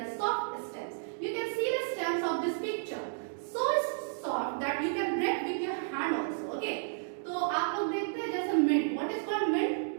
soft stems. You can see the stems of this picture. So soft that you can break with your hand also. Okay. तो आप लोग देखते हैं जैसे mint. What is called mint?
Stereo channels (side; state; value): left; silent; digital silence